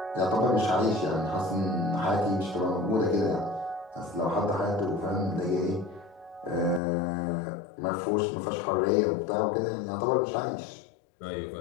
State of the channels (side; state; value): right; drops out; at 6.8 s